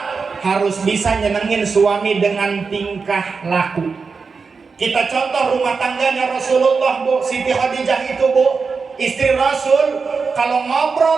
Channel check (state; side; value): quieter; left; 4.9 dB